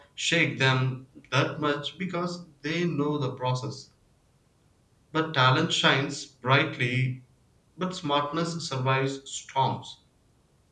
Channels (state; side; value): identical; both; correlation 1.00